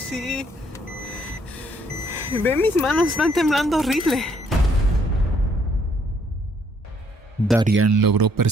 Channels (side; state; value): both; normal; correlation 0.67